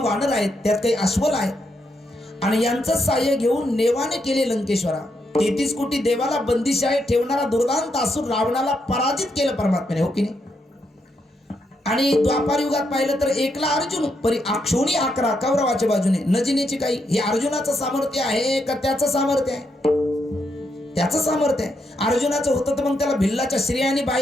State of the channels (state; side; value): normal; both; correlation 0.80